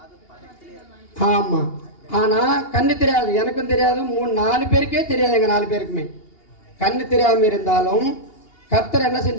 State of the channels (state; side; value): late; right; 2.8 ms